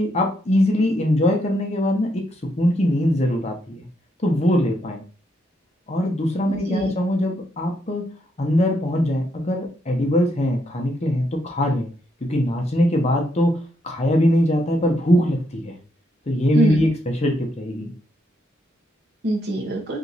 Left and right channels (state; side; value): normal; both; correlation 0.77